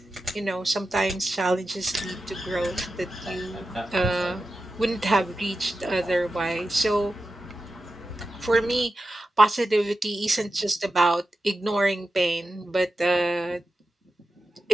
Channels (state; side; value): normal; both; correlation 0.91